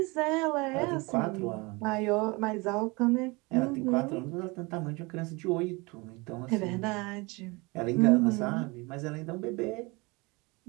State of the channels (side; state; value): left; quieter; 25.9 dB